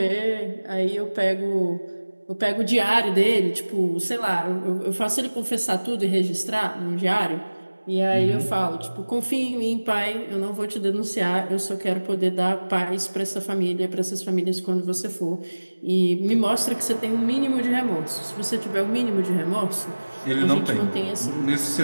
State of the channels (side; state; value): both; inverted; correlation -1.00